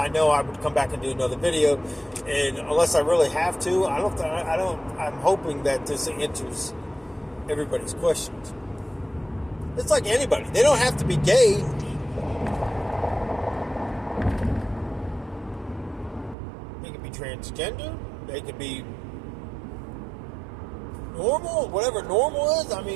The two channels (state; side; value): drops out; left; at 16.4 s